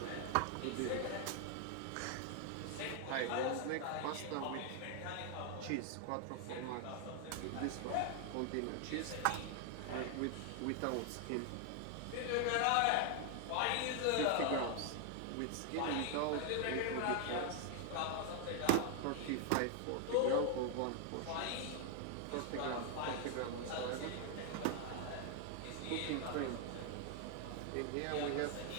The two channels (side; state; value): both; different; correlation 0.00